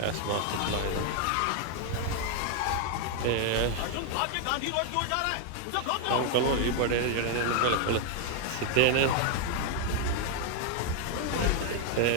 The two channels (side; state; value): both; different; correlation 0.00